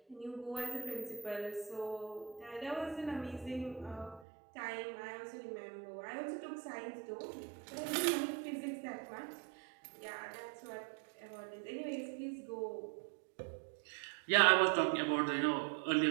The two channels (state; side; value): drops out; left; at 4.2 s